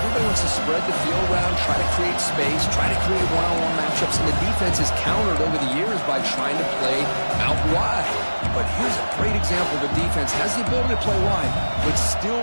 everybody wants to spread the field around, try to create space, try to create one-on-one matchups, and the defense is countered over the years by trying to play out wide. But here's a great example of a defense has the ability to play wide, but still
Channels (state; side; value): inverted; both; correlation -1.00